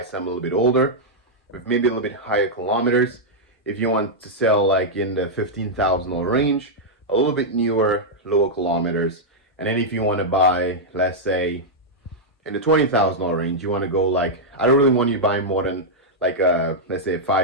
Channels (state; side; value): normal; both; correlation -0.05